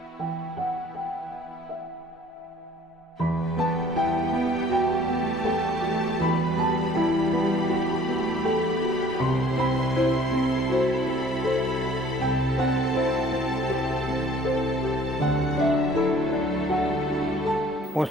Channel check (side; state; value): both; normal; correlation 0.54